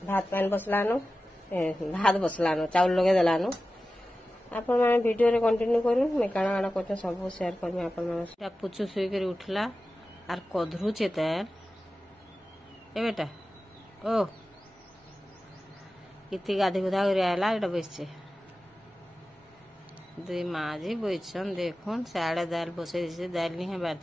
भात पान बसलानो भात बसलानो चावल लगे देलानो आपण माने वीडियो रे कंटिन्यू करू मैं काना काना करते सब शेयर करमी आपण माने पुचु सुई कर उठला आर कधरुचे तेल ए बेटा ओ इति गाधी गुधा कर आला एटा बसছে दुई माजी बइछन देखुन साड़े दाल बसे दिसे दाल नहीं है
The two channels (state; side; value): normal; both; correlation 0.95